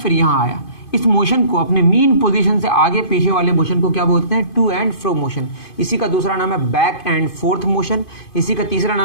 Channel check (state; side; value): late; right; 2.5 ms